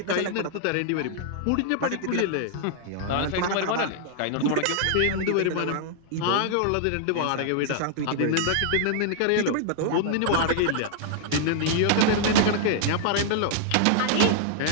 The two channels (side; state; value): both; different; correlation -0.01